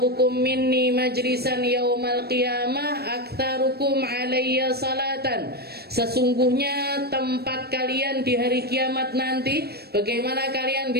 minni majlisan yaumal qiyamah aktsarukum alayya salatan. Sesungguhnya tempat kalian di hari kiamat nanti, bagaimana kalian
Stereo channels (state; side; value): late; left; 0.47 ms